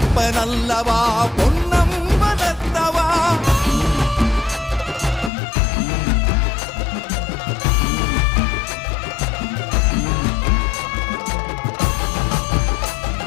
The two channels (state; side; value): drops out; right; at 5.3 s